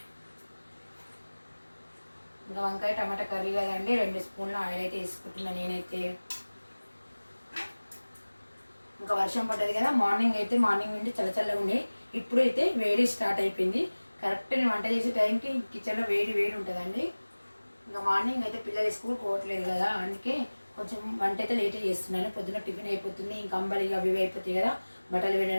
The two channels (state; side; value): inverted; both; correlation -1.00